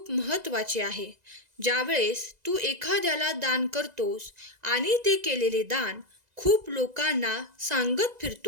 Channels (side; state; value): left; late; 2.0 ms